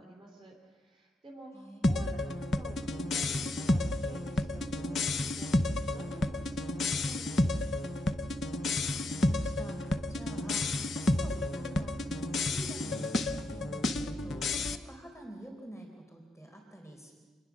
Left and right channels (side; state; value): both; normal; correlation 0.82